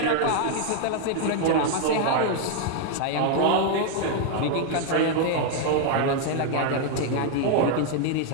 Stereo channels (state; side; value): different; both; correlation 0.00